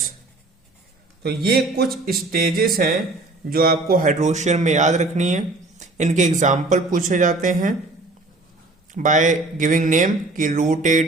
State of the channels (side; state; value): left; quieter; 3.0 dB